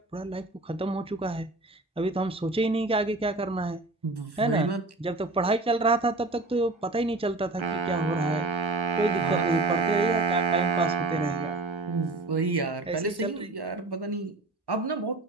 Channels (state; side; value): quieter; left; 3.1 dB